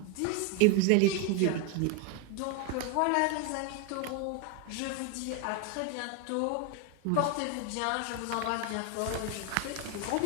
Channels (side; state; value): both; different; correlation 0.01